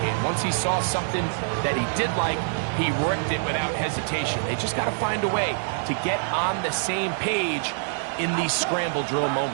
Once he saw something that he did like, he ripped it without hesitation. They just got to find a way to get on the same page in these scramble drill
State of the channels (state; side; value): silent; left; digital silence